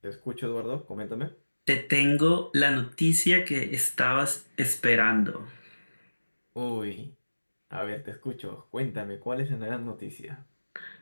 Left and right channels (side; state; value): both; inverted; correlation -1.00